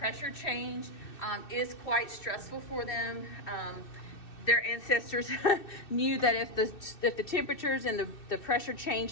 change is quite stressful for them. Their ancestors knew that if the temperatures and the pressure changed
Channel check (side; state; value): right; late; 2.6 ms